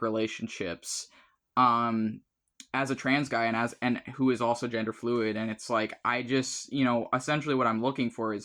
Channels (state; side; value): identical; both; correlation 1.00